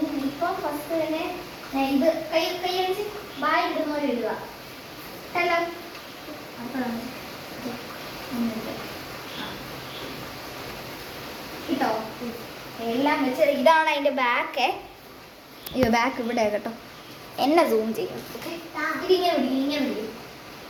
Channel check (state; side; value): identical; both; correlation 1.00